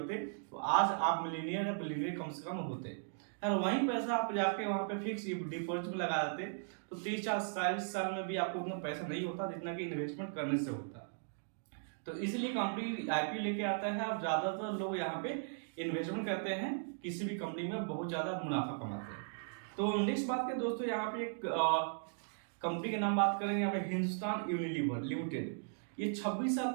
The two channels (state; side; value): silent; left; digital silence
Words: तो आज आप मिलीनियर या बिलीनियर कम से कम होते। और वही पैसा आप जाके वहां पे फिक्स डिपॉजिट में लगा देते तो 30-40 साल में भी आपको उतना पैसा नहीं होता जितना कि इन्वेस्टमेंट करने से होता। तो इसलिए कंपनी आईपीओ लेके आता है और ज्यादातर लोग यहाँ पे इन्वेस्टमेंट करते हैं, किसी भी कंपनी में बहुत ज्यादा मुनाफा कमाते हैं। तो नेक्स्ट बात करें दोस्तों, यहाँ पे एक कंपनी के नाम बात करेंगे, यहाँ पे हिंदुस्तान यूनिलीवर लिमिटेड। ये 26 साल